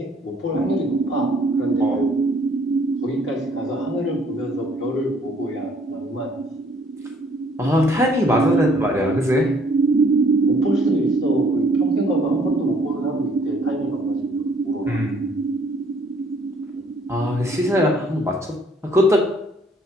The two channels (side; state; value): both; normal; correlation 0.62